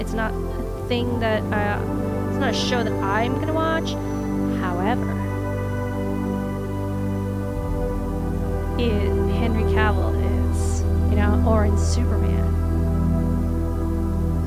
not a thing that, it's not a show that I'm gonna watch. However, Henry Cavill is, you know, or in Superman.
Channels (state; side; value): identical; both; correlation 1.00